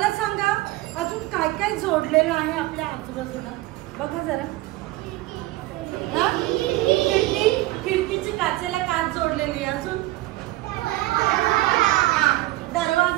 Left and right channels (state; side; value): quieter; left; 18.6 dB